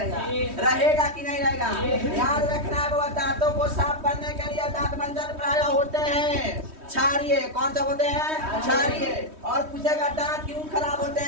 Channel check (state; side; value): late; left; 3.2 ms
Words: रहेगा कि नहीं रहेगा? याद रखना है बाबा दांतों को साफ करने के लिए दांतमंजन प्राय होते हैं क्षारीय। कौन सा होते हैं? क्षारीय। और पूछेगा दांत क्यों खराब होते